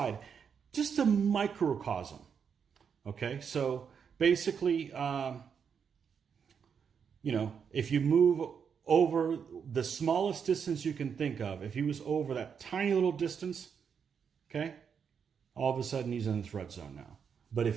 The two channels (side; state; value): left; quieter; 6.9 dB